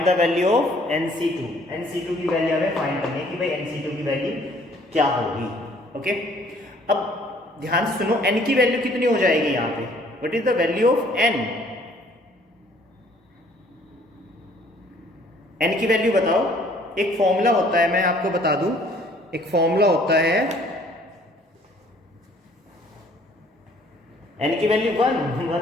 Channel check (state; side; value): normal; both; correlation 0.59